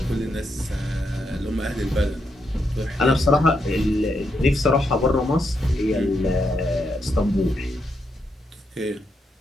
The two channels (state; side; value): normal; both; correlation 0.81